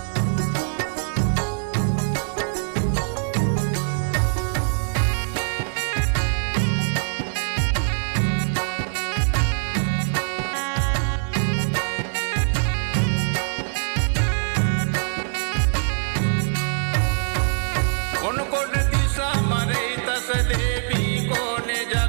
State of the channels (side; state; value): left; silent; digital silence